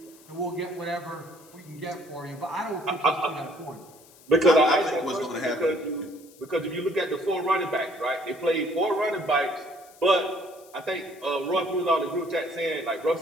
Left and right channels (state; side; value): noise; left; hiss, 24 dB below the sound